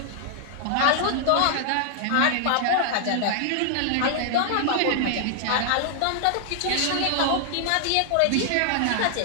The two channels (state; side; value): different; both; correlation 0.00